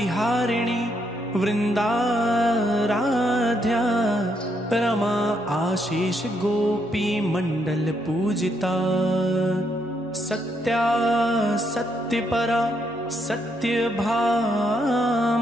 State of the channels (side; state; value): right; noise; hum, 27 dB below the sound